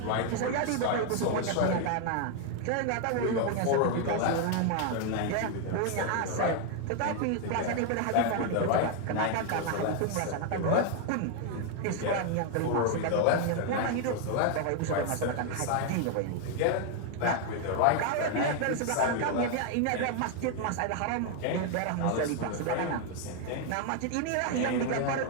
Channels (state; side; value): different; both; correlation 0.00